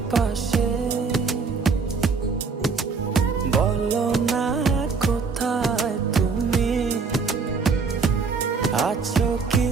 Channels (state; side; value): quieter; left; 4.9 dB